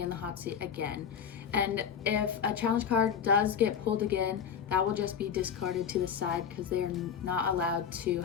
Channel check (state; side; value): quieter; right; 7.5 dB